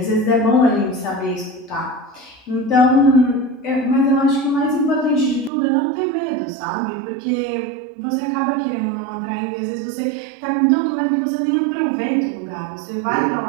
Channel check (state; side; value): drops out; left; at 5.5 s